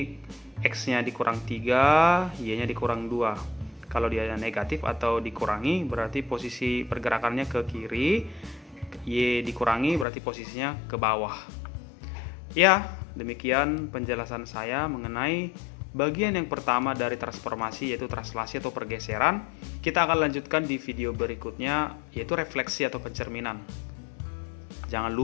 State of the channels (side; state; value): right; drops out; at 10.1 s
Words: X-nya dikurang 3, Y-nya dikurang 2. Kalau dia negatif atau dikurangi, berarti posisi pergerakannya ke kiri. Y dikurangi berarti posisinya ke bawah. Ya, demikian penjelasan saya mengenai bagian yang pertama dari transformasi, yaitu translasi atau pergeseran. Kita akan lanjutkan di video berikutnya, yaitu refleksi atau pencerminan. Jangan